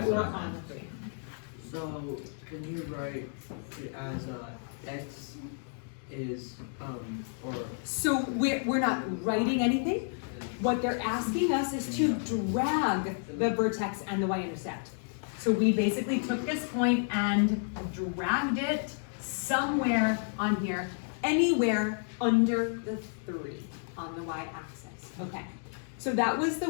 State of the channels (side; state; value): right; silent; 57 dB below the other